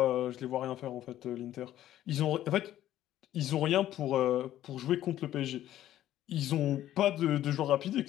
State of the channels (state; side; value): quieter; right; 12.9 dB